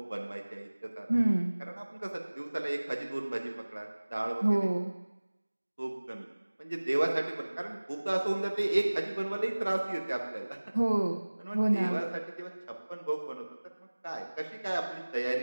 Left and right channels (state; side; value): inverted; both; correlation -1.00